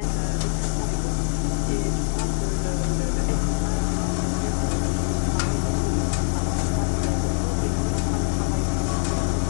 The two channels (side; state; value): right; silent; digital silence